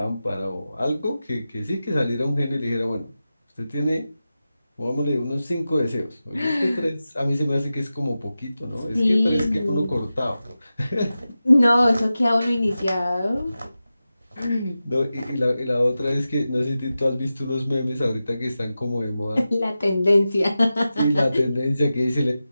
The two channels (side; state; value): both; inverted; correlation -0.93